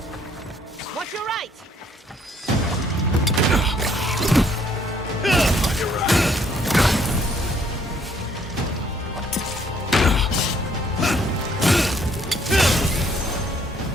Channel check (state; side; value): normal; both; correlation 0.64